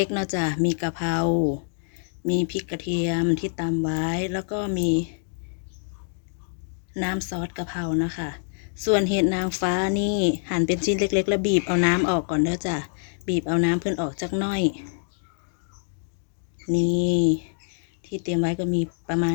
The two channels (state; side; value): silent; right; digital silence